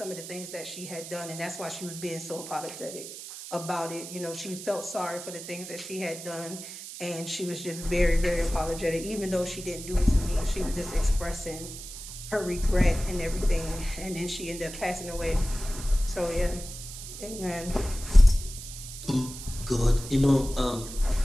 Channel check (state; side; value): noise; right; hiss, 11 dB below the sound